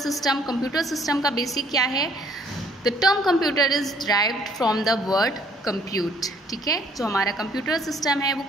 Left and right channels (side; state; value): both; normal; correlation 0.61